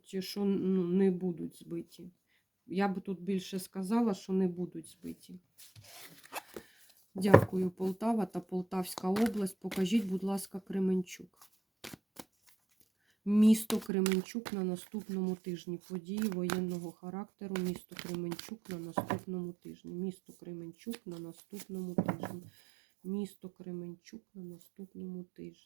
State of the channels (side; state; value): left; drops out; at 13.9 s